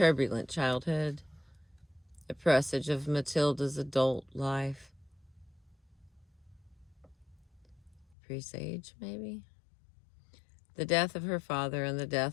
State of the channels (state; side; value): drops out; right; at 8.2 s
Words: childhood, a presage of Matilda's adult life. Presage, maybe? The death of her father and the